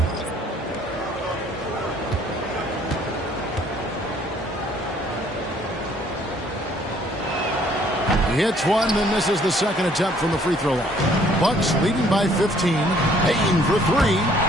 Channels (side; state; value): both; normal; correlation 0.61